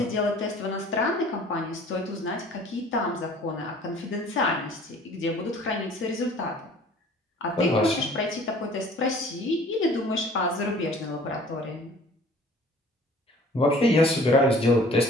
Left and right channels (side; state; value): both; normal; correlation 0.51